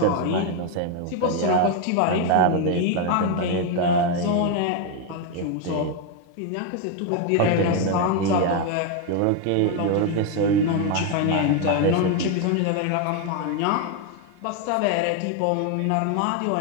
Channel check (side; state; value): both; different; correlation 0.01